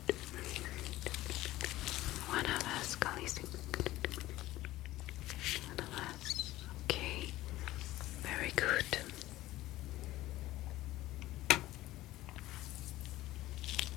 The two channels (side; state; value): right; quieter; 16.4 dB